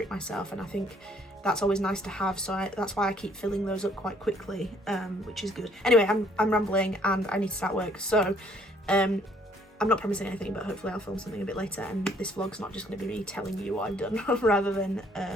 myself, and I think that's always nice to have, so that's why I keep filling those up quite quickly, which is good. Anyway, I'm rambling and I need to start work, so I'm not promising anything, but hopefully I'll film something a bit later, and this vlog's not just going to be me telling you what I've done rather than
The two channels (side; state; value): both; normal; correlation 0.63